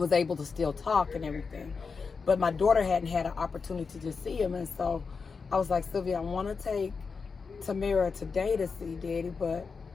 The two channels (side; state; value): right; quieter; 5.1 dB